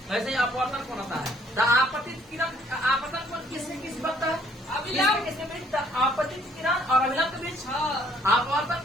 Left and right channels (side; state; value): both; normal; correlation 0.63